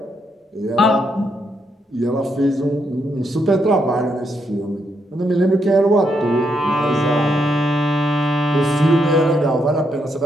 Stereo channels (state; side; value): normal; both; correlation 0.78